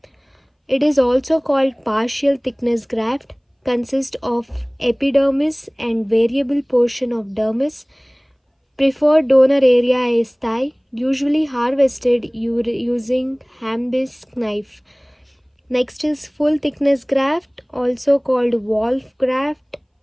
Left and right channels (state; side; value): identical; both; correlation 1.00